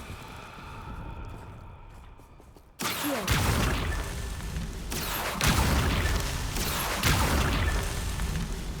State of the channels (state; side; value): identical; both; correlation 1.00